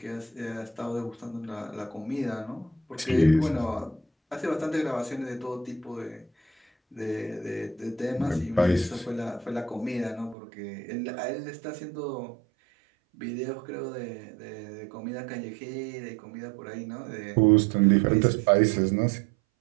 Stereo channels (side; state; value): left; drops out; at 10.4 s